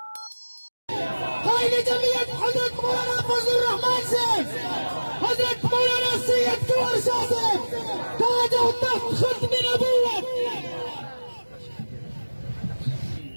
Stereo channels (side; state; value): both; inverted; correlation -1.00